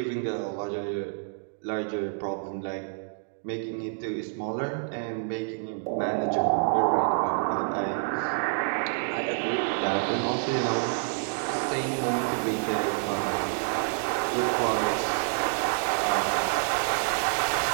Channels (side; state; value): left; silent; digital silence